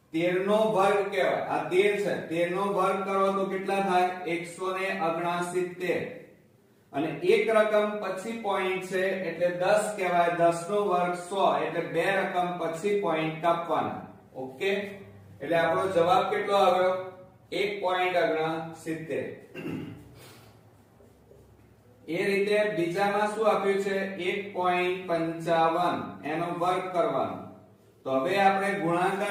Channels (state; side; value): identical; both; correlation 1.00